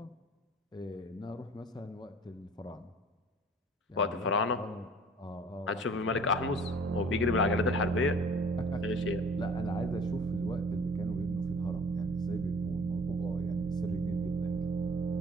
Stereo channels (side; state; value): both; normal; correlation 0.49